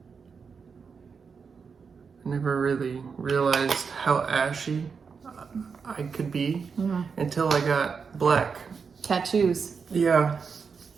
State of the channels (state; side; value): quieter; left; 5.7 dB